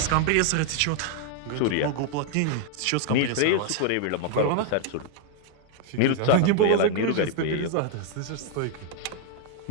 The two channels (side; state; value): both; different; correlation 0.00